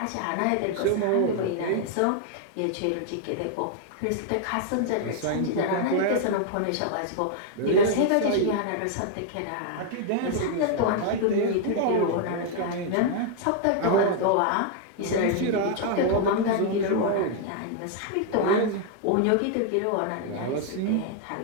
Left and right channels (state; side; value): different; both; correlation 0.00